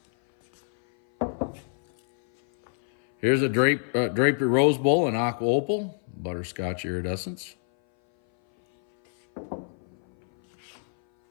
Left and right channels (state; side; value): silent; right; 58 dB below the other